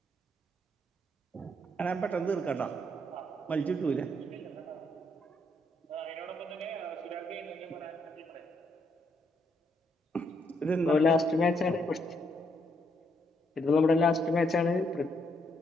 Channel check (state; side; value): normal; both; correlation 0.74